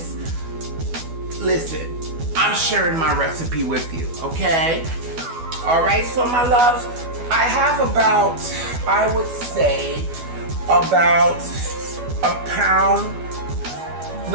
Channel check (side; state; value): left; late; 12 ms